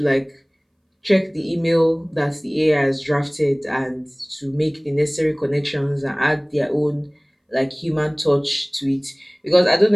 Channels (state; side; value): identical; both; correlation 1.00